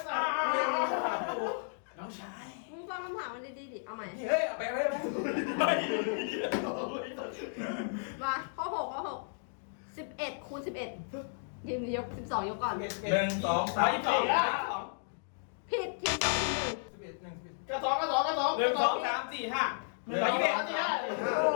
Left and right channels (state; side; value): silent; right; digital silence